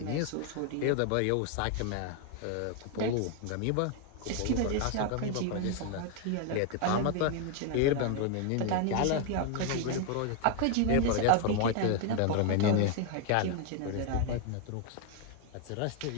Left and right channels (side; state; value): both; different; correlation 0.00